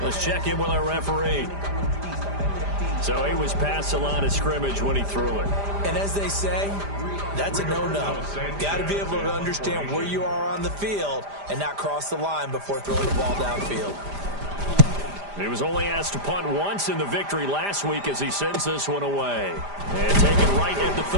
Let's check in with our referee. So he was past the line of scrimmage when he threw it. And as they say, that's a no-no. Got to be able to understand where you are on the field and not cross the line before throwing the ball downfield. He was only asked to punt once in the victory last week as he sends this one away. And taken right at the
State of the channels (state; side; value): late; left; 5.0 ms